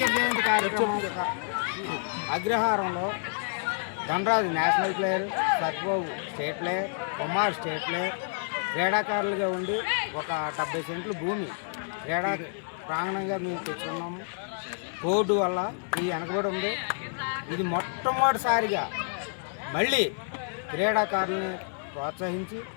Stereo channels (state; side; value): silent; right; digital silence